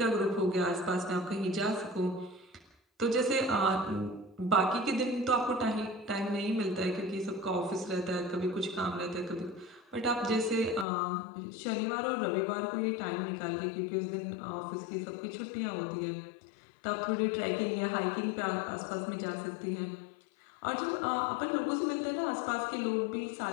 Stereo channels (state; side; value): drops out; right; at 10.9 s